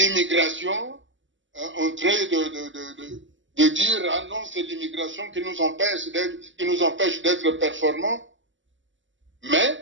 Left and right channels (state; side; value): late; left; 0.55 ms